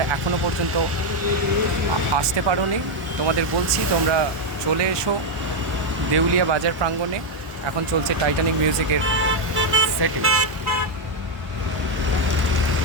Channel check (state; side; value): late; left; 1.1 ms